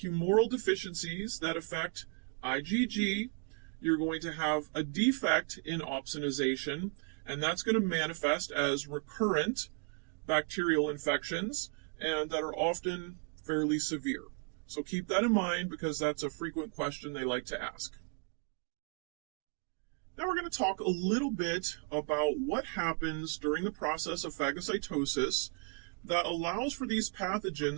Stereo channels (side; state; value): left; quieter; 38.9 dB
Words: deficiencies that affect IgG, you're going to have a defect in opsonization, and that's going to manifest as recurrent bacterial infections, and that are often fairly severe. So keep that in mind because that's a frequent question they like to ask. Now we're going to talk a little bit about what happens during the process of phagocytosis that allows for these